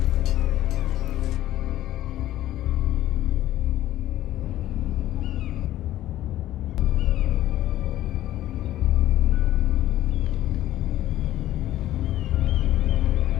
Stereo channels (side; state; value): right; quieter; 13.9 dB